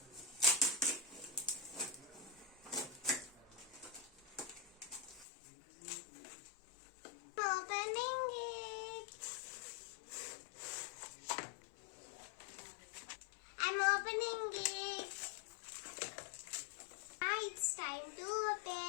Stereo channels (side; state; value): right; drops out; at 5.2 s